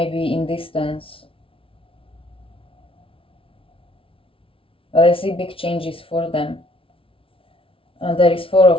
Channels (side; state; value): right; late; 0.26 ms